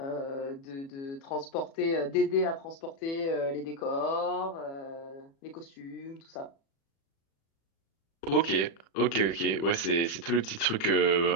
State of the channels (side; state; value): right; late; 36 ms